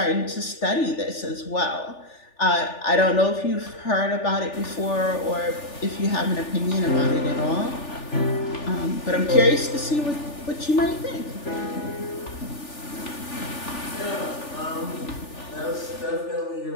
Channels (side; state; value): right; late; 3.4 ms